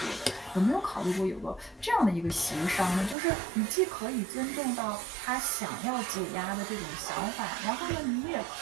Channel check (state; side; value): drops out; left; at 3.2 s